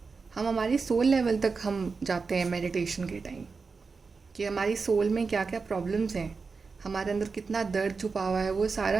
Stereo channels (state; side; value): quieter; left; 4.7 dB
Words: हम हमारी सोल लेवल तक हम जाते हैं मेडिटेशन के टाइम, कि हमारी सोल में क्या क्या प्रॉब्लम्स हैं, हमारे अंदर कितना दर्द छुपा हुआ है, वो